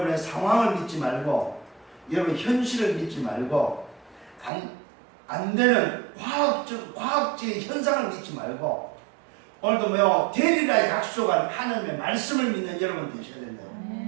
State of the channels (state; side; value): drops out; left; at 4.5 s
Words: 상황을 믿지 말고, 여러분 현실을 믿지 말고, 안 되는 과학적인 현상을 믿지 말고, 오늘도 되리라 약속한 하나님의 말씀을 믿는 여러분 되셔야 된다.